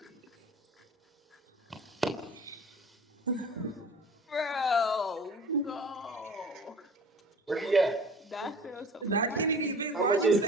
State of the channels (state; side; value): normal; both; correlation 0.43